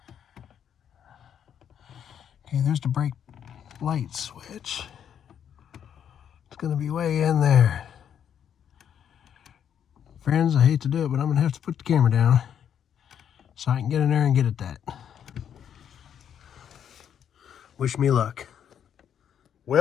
Okay, there's the brake light switch. It's going to be way in there. Friends, I hate to do it, but I'm going to have to put the camera down so I can get in there and get at that. Wish me luck.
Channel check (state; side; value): quieter; right; 8.9 dB